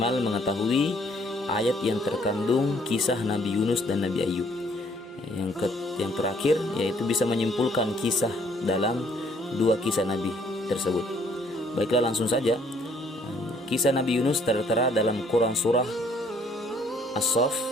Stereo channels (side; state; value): both; normal; correlation 0.63